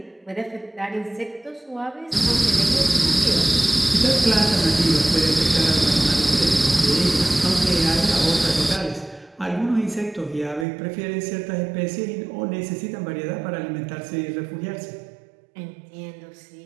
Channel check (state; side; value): drops out; left; at 10.7 s